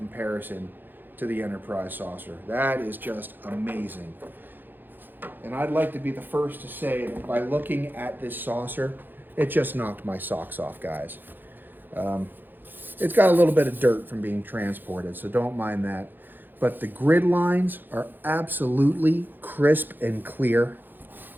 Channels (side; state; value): left; late; 0.091 ms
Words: to the Enterprise saucer. That is just amazing. And I'd like to be the first to say that by looking at this saucer, it just knocked my socks off, guys. It's got a little bit of dirt from being transported, so don't mind that. But the grid lines are absolutely crisp and clear.